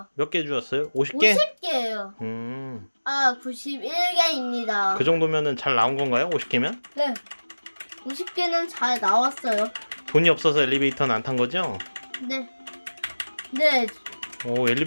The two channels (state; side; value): inverted; both; correlation -1.00